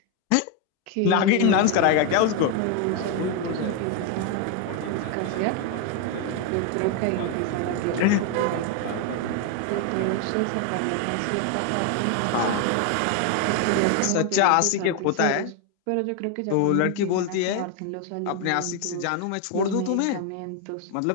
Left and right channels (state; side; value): different; both; correlation 0.01